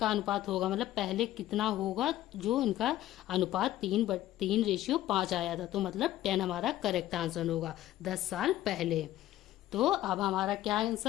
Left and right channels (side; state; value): right; quieter; 14.1 dB